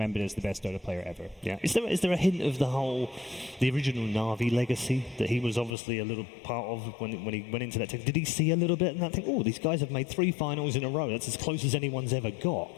as the best Dota player ever. Yeah. Is there a hint of the original Na'Vi legacy that he was obviously a little part of when he went into that team? Did he see a little bit and that think, oh, these guys have made 3 finals in a row. That's as close as anyone's ever got.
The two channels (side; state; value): right; drops out; at 5.8 s